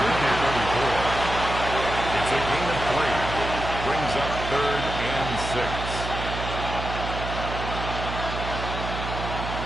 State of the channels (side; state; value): right; noise; hum, 6 dB below the sound